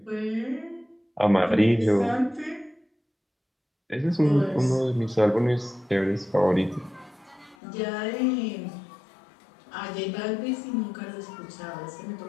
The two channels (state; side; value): drops out; right; at 7.6 s